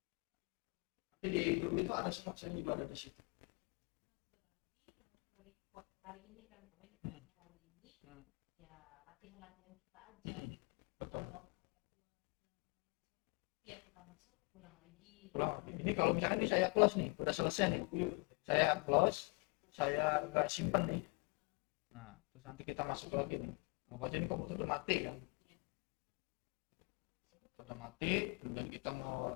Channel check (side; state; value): right; quieter; 30.8 dB